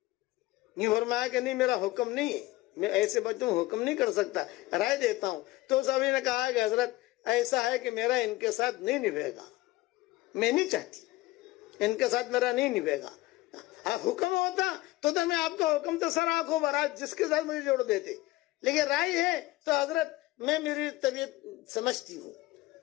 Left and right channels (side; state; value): right; quieter; 18.7 dB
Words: نہیں فرمایا کہ نہیں میرا حکم نہیں ہے، میں ایسے بچوں حکم نہیں کر سکتا، رائے دیتا ہوں۔ تو صحابی نے کہا کہ حضرت ایسا ہے کہ میرا ان کے ساتھ نہیں نبھے گا، میں نہیں چاہتی، ان کے ساتھ میرا نہیں نبھے گا۔ حکم ہوتا تو میں آپ کا حکم تو سر آنکھوں برات جس کے ساتھ مجھے جوڑ دیتے، لیکن رائے ہے تو حضرت میں میری طبیعت سمجھتی ہوں،